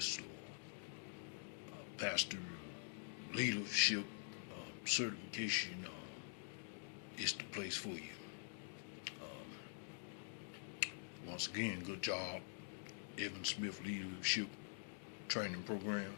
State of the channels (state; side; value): silent; right; digital silence